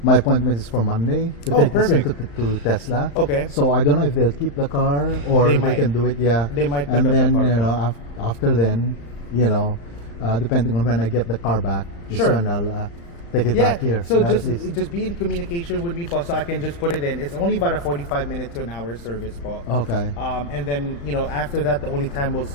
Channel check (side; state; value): right; late; 35 ms